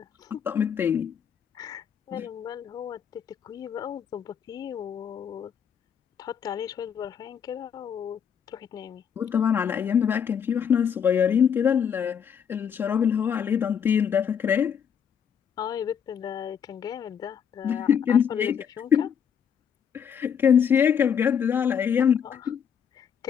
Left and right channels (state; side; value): quieter; right; 7.8 dB